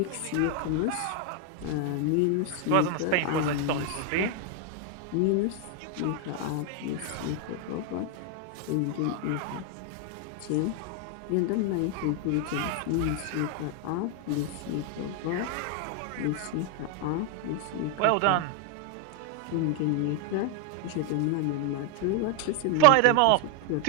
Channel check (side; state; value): both; different; correlation 0.00